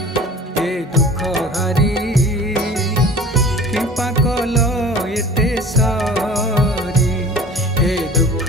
ए दुख हारी कृपा कल एते सारी ए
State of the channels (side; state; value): both; normal; correlation 0.42